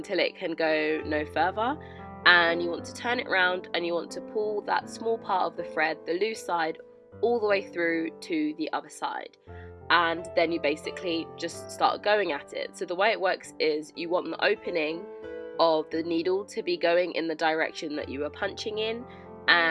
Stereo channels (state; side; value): identical; both; correlation 1.00